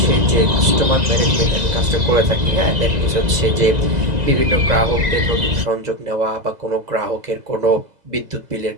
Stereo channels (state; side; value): late; left; 2.0 ms